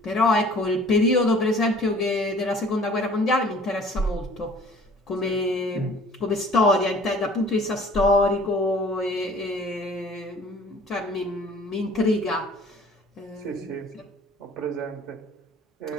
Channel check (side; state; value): both; normal; correlation 0.51